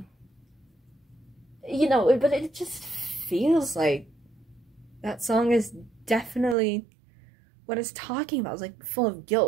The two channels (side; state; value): left; drops out; at 6.6 s